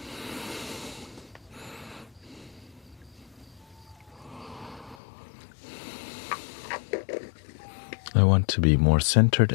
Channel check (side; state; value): right; drops out; at 5.0 s